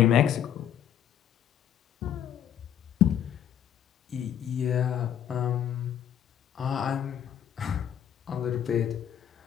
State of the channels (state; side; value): quieter; right; 9.9 dB